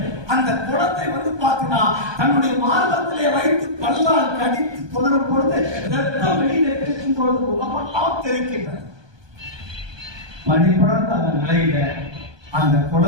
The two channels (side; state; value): left; late; 1.2 ms